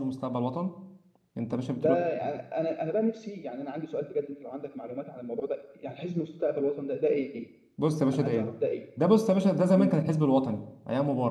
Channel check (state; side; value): identical; both; correlation 1.00